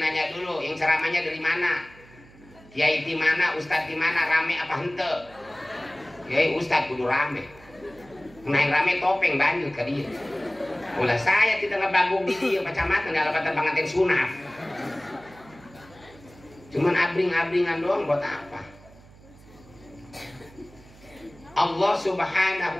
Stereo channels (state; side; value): noise; right; hum, 23 dB below the sound